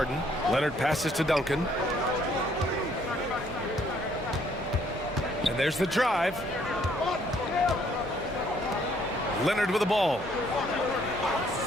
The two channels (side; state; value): both; normal; correlation 0.65